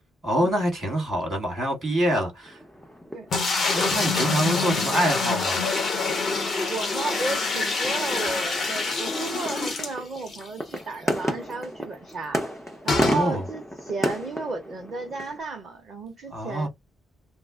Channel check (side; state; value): both; normal; correlation 0.76